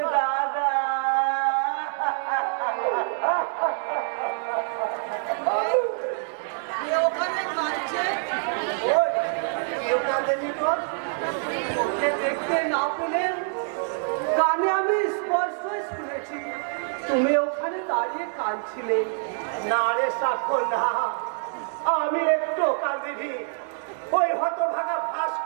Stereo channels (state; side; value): silent; left; 59 dB below the other